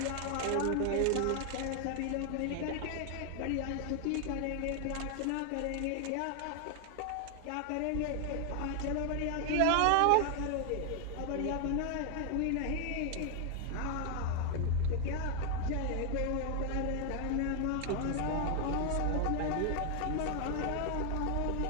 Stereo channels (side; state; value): both; different; correlation 0.00